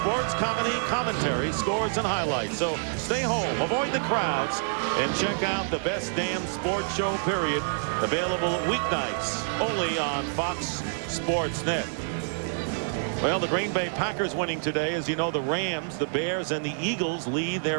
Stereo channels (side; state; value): left; silent; digital silence